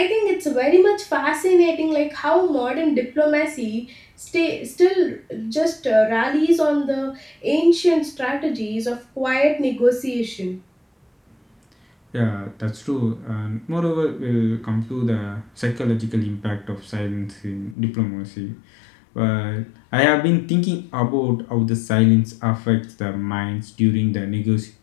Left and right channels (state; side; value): drops out; right; at 17.8 s